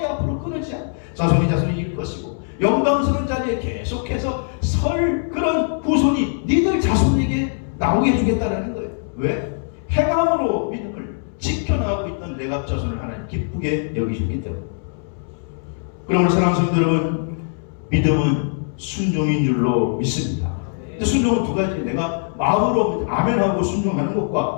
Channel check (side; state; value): right; silent; 65 dB below the other